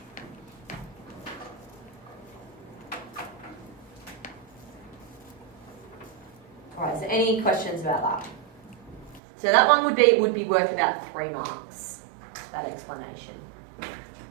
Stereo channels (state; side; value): drops out; left; at 9.2 s